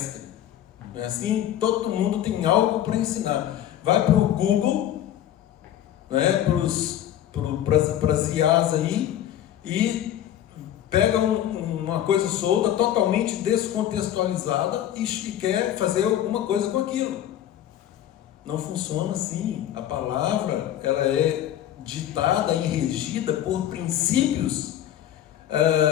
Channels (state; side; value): quieter; right; 11.6 dB